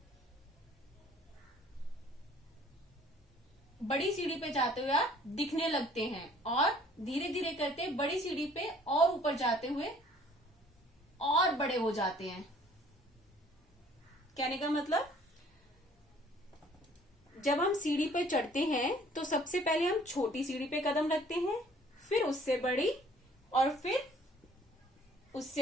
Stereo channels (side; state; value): both; normal; correlation 0.56